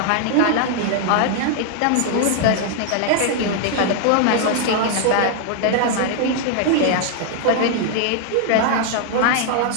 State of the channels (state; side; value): different; both; correlation -0.01